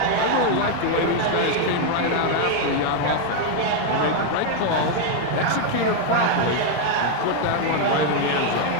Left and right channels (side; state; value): both; different; correlation 0.00